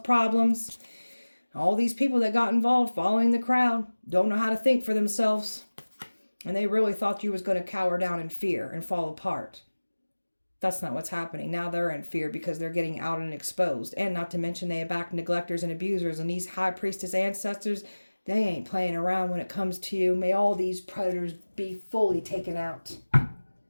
problems. All these people that got involved following the crowd don't know how to think for themselves. And they really thought you was going to cower down in fear and fall apart. That's not what's happening. Now they're in fear because they're getting out and exposed. And not to mention they back neglectors and abusers. And these high priestess ancestors, they ain't playing around when it comes to you. May all these predators be fully taken out.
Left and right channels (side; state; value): both; inverted; correlation -1.00